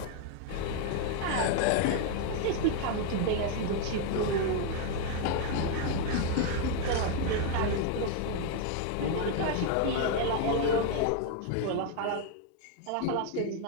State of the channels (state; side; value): different; both; correlation 0.00